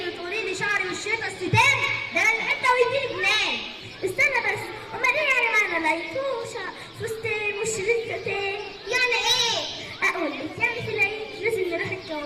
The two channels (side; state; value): both; identical; correlation 1.00